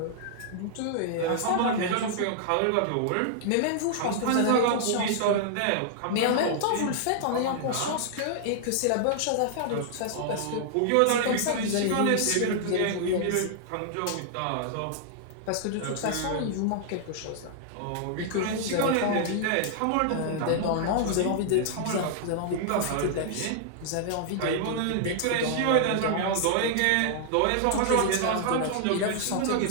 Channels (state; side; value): different; both; correlation -0.01